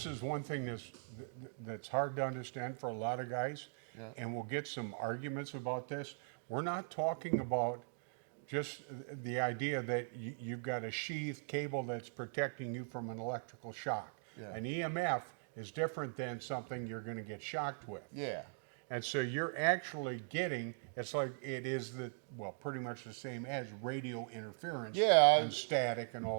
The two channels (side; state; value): left; silent; digital silence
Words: is one thing that's hard to understand for a lot of guys, and we'll get some arguments about this. We're not talking about just the idea that you've got a sheath cable that's protecting you from an electrical shock. Yeah. An EMF is different than something you're going to get shocked with. Yeah. And so you're actually getting, it's like it is pretty much the same as radio interference and static and